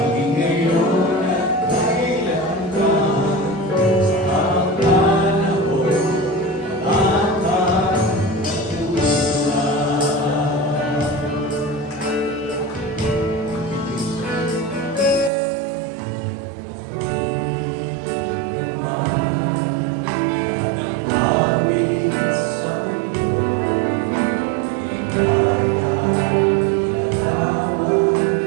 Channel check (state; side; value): drops out; left; at 15.3 s